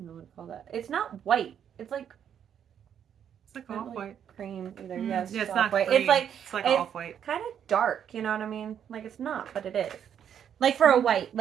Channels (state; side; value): quieter; left; 8.8 dB